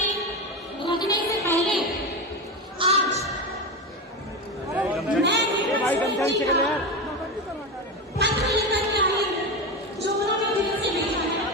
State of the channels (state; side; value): normal; both; correlation 0.18